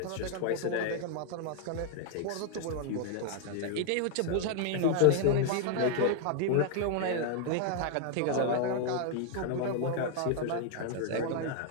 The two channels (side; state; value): both; different; correlation 0.00